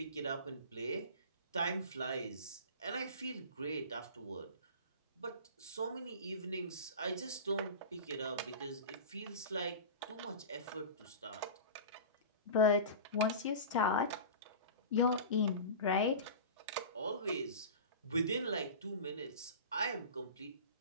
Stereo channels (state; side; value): inverted; both; correlation -0.32